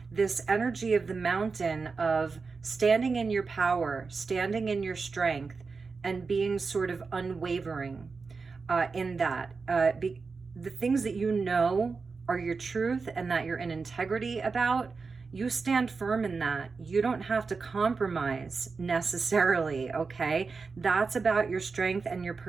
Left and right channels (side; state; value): left; quieter; 4.6 dB